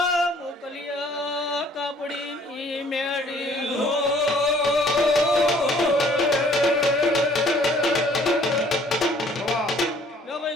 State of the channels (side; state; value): both; normal; correlation 0.58